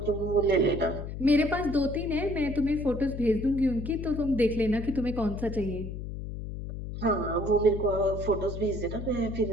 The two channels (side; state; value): left; noise; hum, 7 dB below the sound